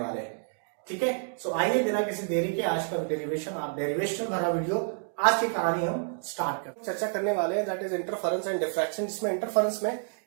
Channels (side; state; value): left; silent; 59 dB below the other